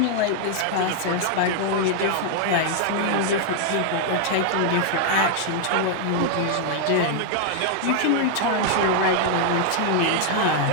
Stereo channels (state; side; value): different; both; correlation 0.00